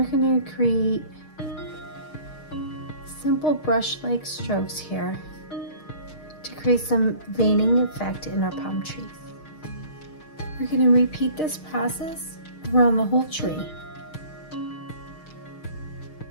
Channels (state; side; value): late; right; 6.5 ms